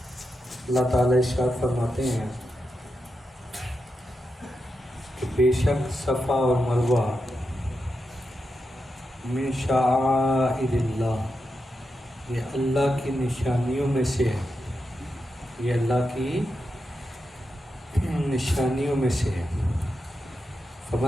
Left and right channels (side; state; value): both; normal; correlation 0.87